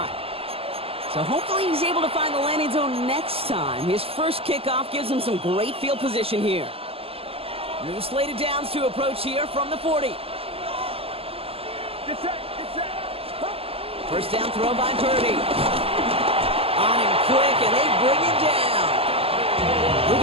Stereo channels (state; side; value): late; left; 0.28 ms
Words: So hopefully he's able to find the landing zone next time. His first kickoff gives him some great field position here. New slated downs to approach here from the 40. First down throw by Purdy. On him quick, and they bring him down.